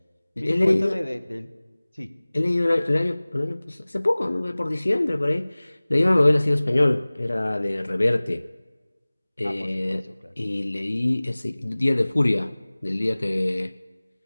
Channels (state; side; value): inverted; both; correlation -1.00